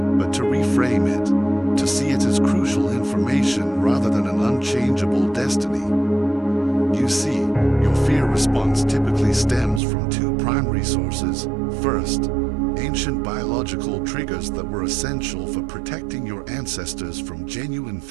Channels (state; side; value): drops out; left; at 9.8 s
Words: to reframe it, to see it as crucial information rather than an unchangeable destiny. You see, your fear response typically stems from two primary sources. First, ancient biological triggers that were essential for protecting your ancestors from genuine